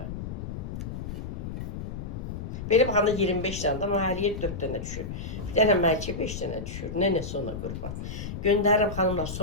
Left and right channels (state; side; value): noise; left; rumble, 7 dB below the sound